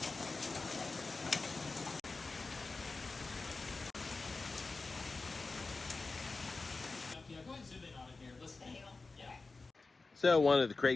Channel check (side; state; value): right; quieter; 3.8 dB